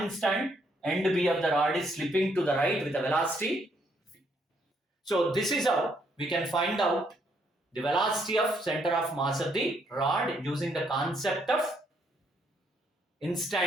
instant end B of the rod is slipping to the right with a velocity v. So this is how we can find out the velocity of center of mass of the rod using the concept of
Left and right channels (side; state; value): both; normal; correlation 0.72